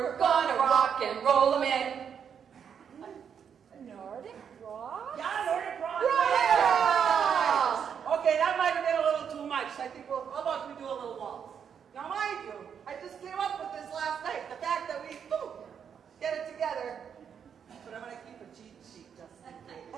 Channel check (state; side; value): quieter; left; 7.6 dB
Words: gonna rock and roll them in. Nordic rock? Yeah, Nordic rock. Yeah! Okay, that might have been a little too much. I think how about we do a little waltz? Now, mind you, I just came up with this last night. The fact that we get it together. But I'm gonna keep a cheat sheet just in